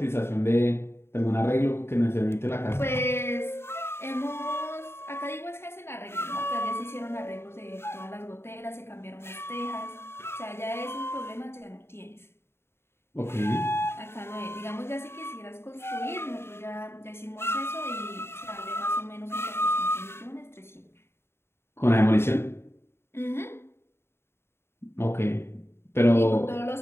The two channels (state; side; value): late; right; 0.12 ms